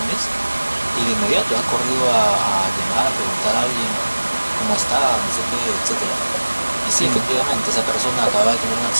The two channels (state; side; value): inverted; both; correlation -1.00